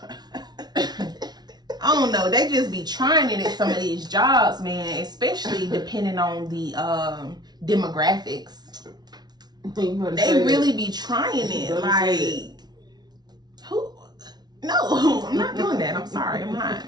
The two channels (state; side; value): late; left; 0.19 ms